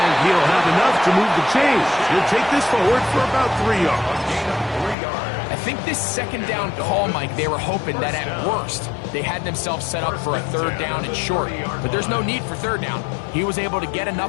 he'll have enough to move the chains. He'll take this forward for about 3 yards. I think this second down call, Mike, they were hoping that at worst they had themselves set up for a 3rd down and short. But there's no need for 3rd down. He was able to get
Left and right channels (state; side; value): drops out; right; at 5.0 s